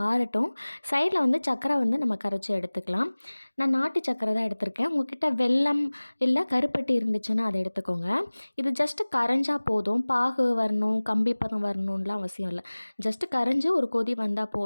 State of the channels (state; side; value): inverted; both; correlation -1.00